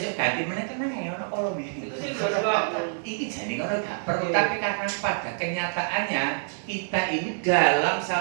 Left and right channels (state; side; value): silent; left; digital silence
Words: ganti meneh tenang ya ono kalau iki. Iki jane ngono gak perlu tapi karena pada kenyataannya kita ini dalam